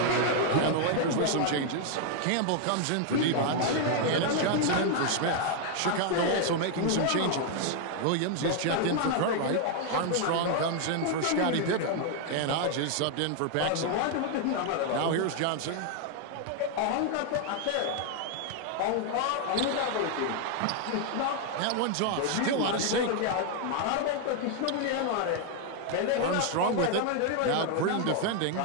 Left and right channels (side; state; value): both; different; correlation 0.00